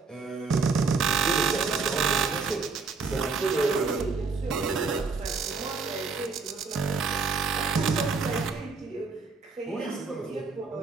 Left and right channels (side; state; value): left; quieter; 4.6 dB